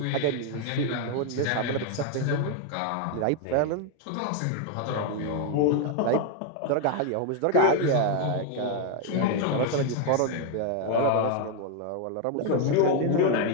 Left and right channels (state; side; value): different; both; correlation 0.01